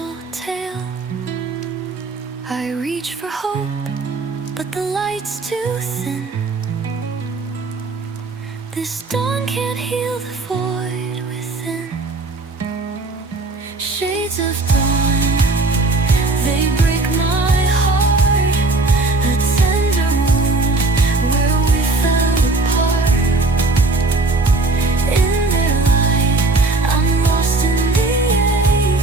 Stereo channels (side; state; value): left; quieter; 3.3 dB